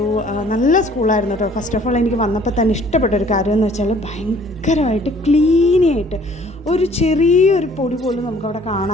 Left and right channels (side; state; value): both; normal; correlation 0.56